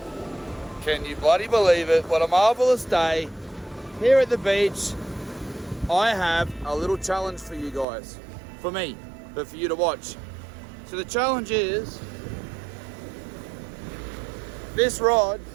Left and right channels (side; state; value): left; drops out; at 7.9 s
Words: Can you bloody believe it? What a marvelous day here at the beach. I have a little challenge for you guys, for me, but for you to watch. So the challenge is this rod.